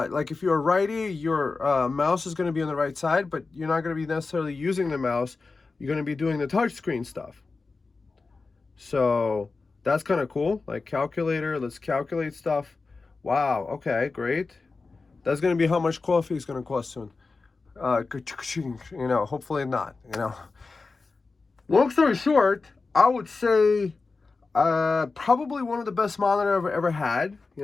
if you're a righty, your mouse is going to be on the right side, but you're not going to be necessarily using the mouse. You're going to be doing the touchscreen stuff. So that's kind of cool. Like calculator, let's calculate stuff. Wow, okay, great. That's going to be how much coffee is going to cost soon. You know, hopefully not, you know. Long story short, I would say probably one of the best monitor I've ever had.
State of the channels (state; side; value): quieter; right; 4.0 dB